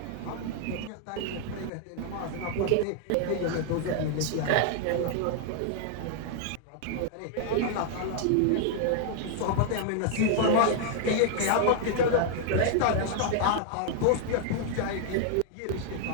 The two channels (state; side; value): different; both; correlation 0.00